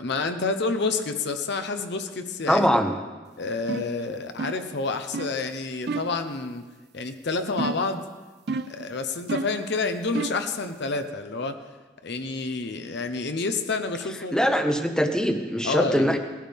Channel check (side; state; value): both; normal; correlation 0.46